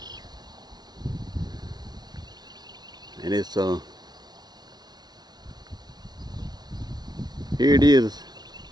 And it's here it is,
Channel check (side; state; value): left; late; 0.19 ms